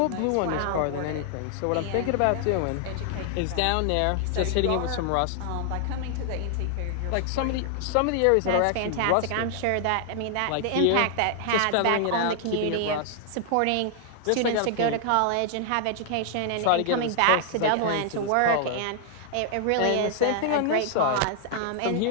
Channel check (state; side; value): different; both; correlation 0.00